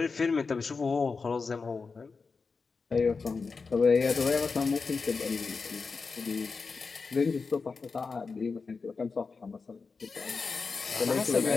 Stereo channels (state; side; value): quieter; right; 4.7 dB